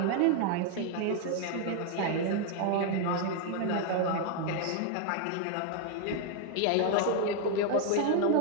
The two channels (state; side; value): different; both; correlation 0.00